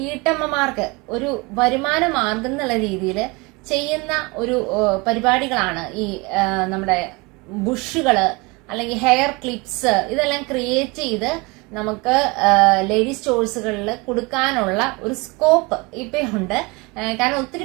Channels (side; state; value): left; quieter; 26.4 dB